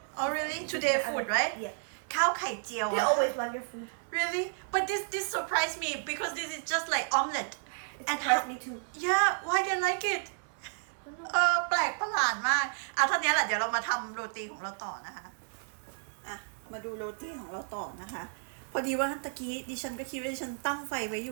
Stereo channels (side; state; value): left; silent; 56 dB below the other